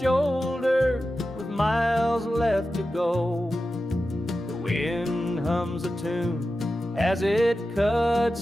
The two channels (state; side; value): normal; both; correlation 0.92